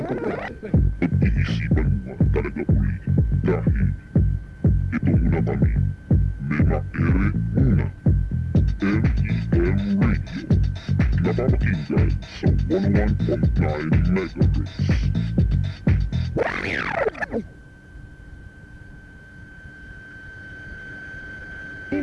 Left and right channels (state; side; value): identical; both; correlation 1.00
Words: about it. Pag-iisipan mo talaga uli dahil ito muna kami. Mema Ere muna. M.E.M. Radio. Napapakinggan sa 101.9 MHz.